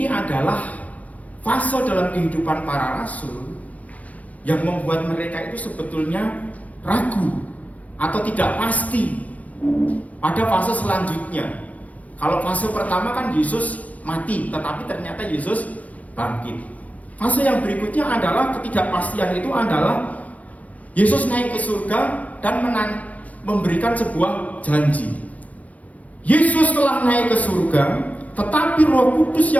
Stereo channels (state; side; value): late; right; 0.069 ms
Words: adalah fase dalam kehidupan para rasul yang membuat mereka itu sebetulnya ragu atau tidak pasti pada fase selanjutnya. Kalau fase pertama kan Yesus mati, tetapi ternyata Yesus bangkit. Fase yang berikutnya adalah ketidakpastian, itu adalah Yesus naik ke surga dan memberikan sebuah janji. Yesus telah naik ke surga, tetapi Roh Kudus